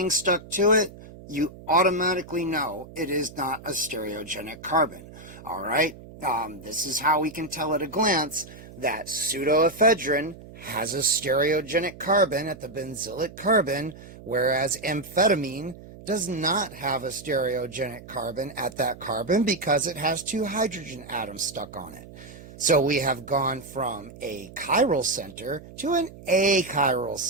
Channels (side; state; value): right; noise; hum, 17 dB below the sound